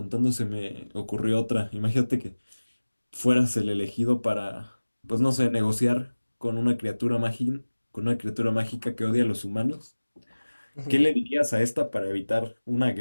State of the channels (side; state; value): both; inverted; correlation -1.00